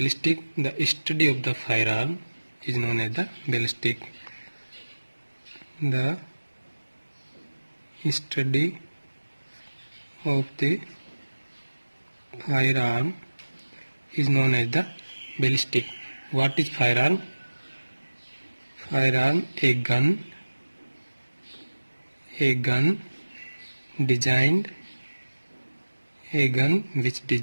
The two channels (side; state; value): both; inverted; correlation -1.00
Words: The study of the firearm is known as the ballistic. The study of the firearm is known as the ballistic. What is firearm? Firearm, a gun designed, a gun which